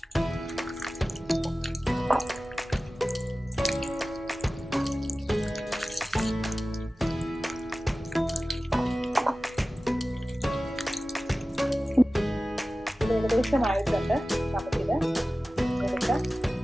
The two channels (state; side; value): normal; both; correlation 0.96